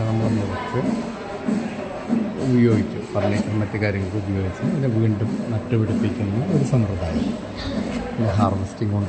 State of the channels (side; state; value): both; identical; correlation 1.00